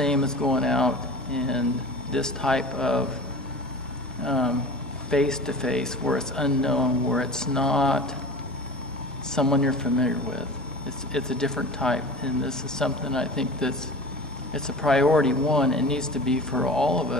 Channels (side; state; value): both; normal; correlation 0.37